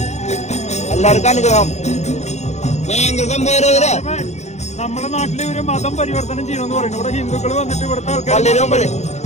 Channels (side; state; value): right; late; 0.33 ms